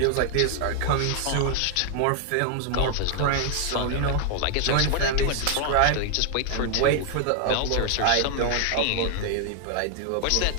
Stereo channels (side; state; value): both; different; correlation 0.00